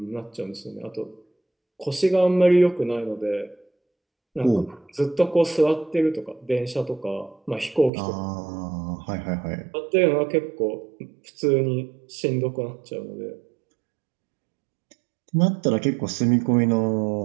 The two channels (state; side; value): drops out; left; at 7.9 s